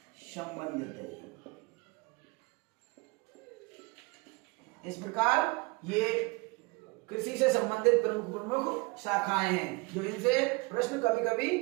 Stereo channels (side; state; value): left; quieter; 27.0 dB